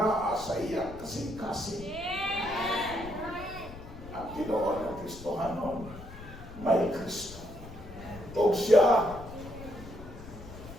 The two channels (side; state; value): left; noise; rumble, 14 dB below the sound